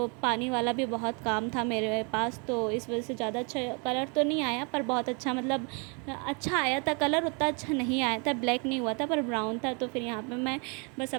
पानी वाला भी बहुत काम था मेरे पास, तो इस वजह से ज़्यादा अच्छा कलर तो नहीं आया, पर बहुत अच्छा मतलब अच्छा आया था कलर। उतना अच्छा नहीं आया था, ब्लैक नहीं हुआ था पर ब्राउन था। तो फिर यहाँ पे मैं बस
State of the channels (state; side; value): quieter; left; 34.7 dB